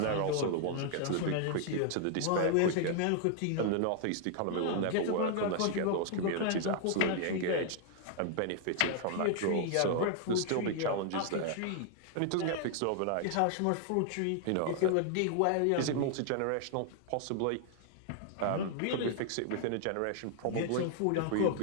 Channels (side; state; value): both; different; correlation 0.00